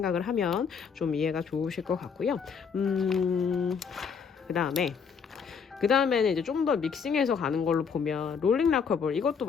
하면 좀 이해가 좋으실 것 같고요. 그 다음에는 이제 좀 더 믹싱해서 가는 걸로 보면 롤링 락커볼, 이것도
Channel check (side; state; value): right; quieter; 6.2 dB